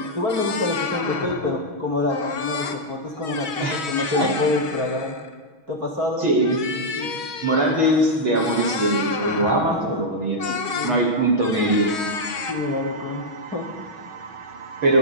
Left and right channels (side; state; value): left; late; 6.3 ms